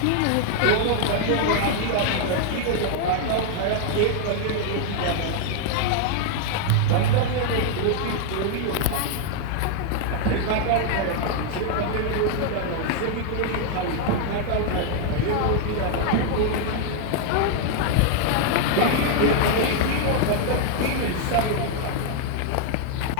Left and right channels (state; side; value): different; both; correlation 0.00